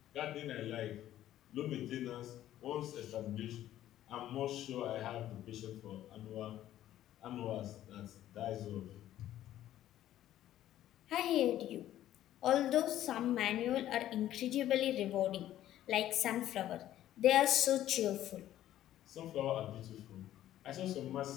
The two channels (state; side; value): quieter; right; 12.8 dB